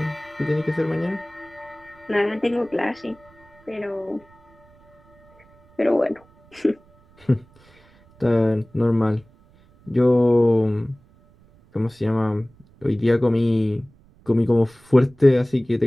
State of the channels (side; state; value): right; noise; rumble, 29 dB below the sound